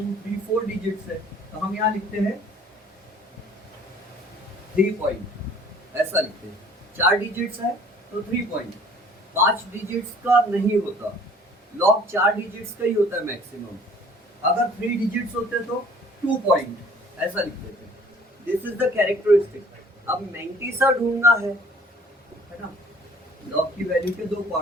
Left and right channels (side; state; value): both; normal; correlation 0.53